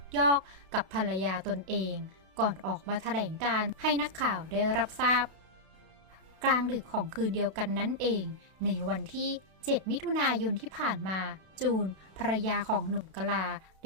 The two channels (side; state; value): left; late; 32 ms